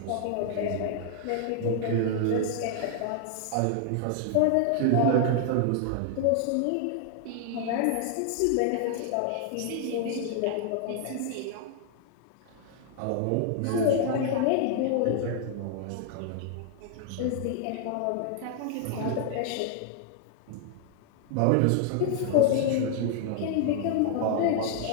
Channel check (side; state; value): both; different; correlation 0.00